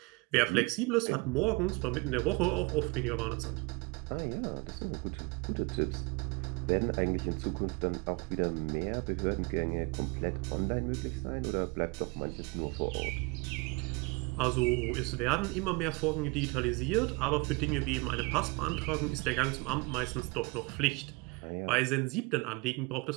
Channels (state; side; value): quieter; left; 27.3 dB